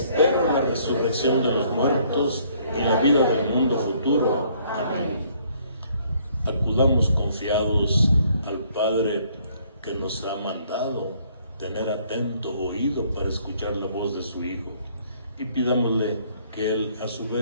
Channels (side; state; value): both; inverted; correlation -0.63